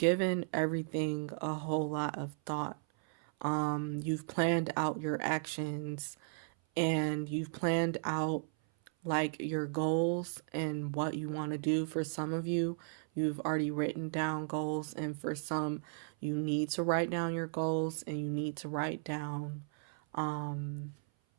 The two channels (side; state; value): left; silent; 54 dB below the other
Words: everything a whole lot of thought. You've planned out your actions, and you've planned out like your goals and what you want to do. For some of you, you've already written down goals, and for some, you need to write down your goals, and you need to write down